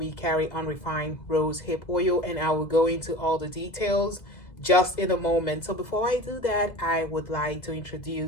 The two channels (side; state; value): right; late; 2.0 ms